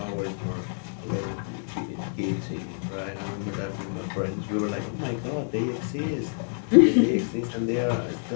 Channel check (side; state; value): right; silent; digital silence